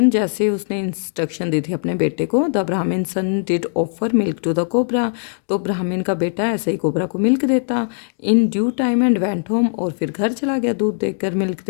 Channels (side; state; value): right; silent; digital silence